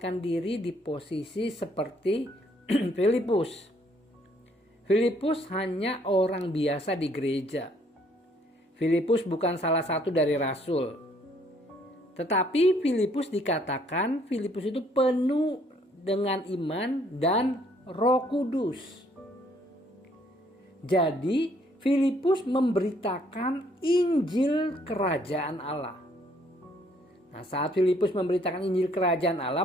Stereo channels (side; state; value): both; normal; correlation 0.65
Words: diri di posisi seperti Filipus. Filipus hanya orang biasa di gereja. Filipus bukan salah satu dari rasul. Tetapi Filipus dikatakan Filipus itu penuh dengan iman dan Roh Kudus. Jadi Filipus memberitakan Injil kerajaan Allah. Nah, saat Filipus memberitakan Injil kerajaan Allah,